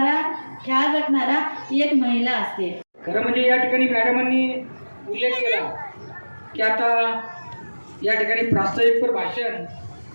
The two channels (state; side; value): inverted; both; correlation -1.00